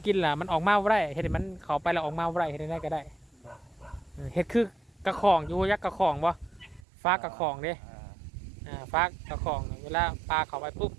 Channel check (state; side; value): drops out; left; at 6.9 s